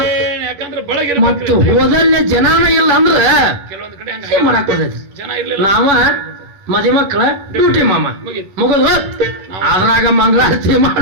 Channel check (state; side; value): late; left; 11 ms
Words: ಯಾಕಂದ್ರೆ ಬಳಗ ಮತ್ತು ಹೋದಲ್ಲೇ ಜನಾನ ಇಲ್ಲ ಅಂದ್ರ ಕೆಲವೊಂದ್ ಕಡೆ ಮಾಡಕ್ ಬರ್ತೈತಿ ಜನ ಇರ್ಲಿಲ್ಲ ನಾವ ಮದಿ ಮಕ್ಕಳ ಡ್ಯೂಟಿ ಮಾಮ ಮುಗದ್ ಅದ್ರಾಗ ಮಂಗಳಾರತಿ